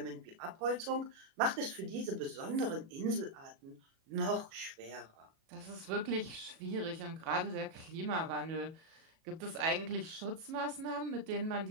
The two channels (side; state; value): left; late; 37 ms